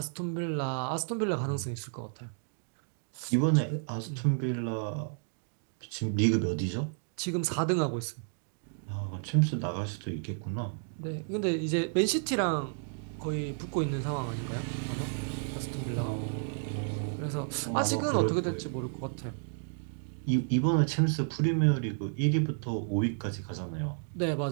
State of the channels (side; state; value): left; silent; digital silence